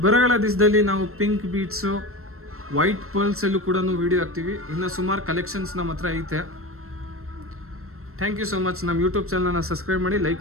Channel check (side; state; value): left; late; 0.62 ms